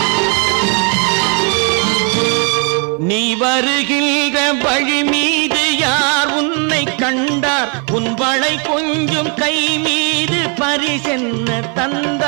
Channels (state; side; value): quieter; left; 36.4 dB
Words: கொஞ்சம் கை மீது பரிசென்ன